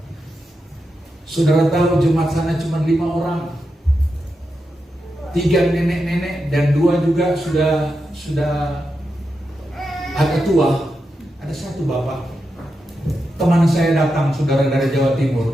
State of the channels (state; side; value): normal; both; correlation 0.87